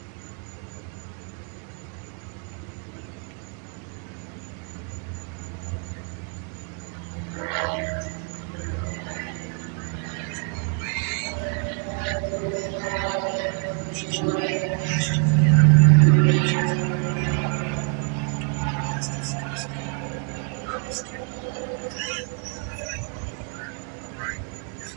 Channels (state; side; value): quieter; left; 37.1 dB